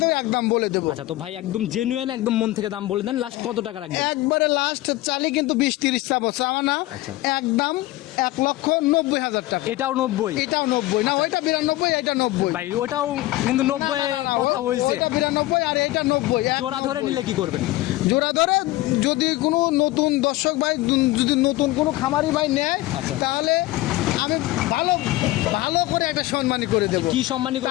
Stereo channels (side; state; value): right; quieter; 17.7 dB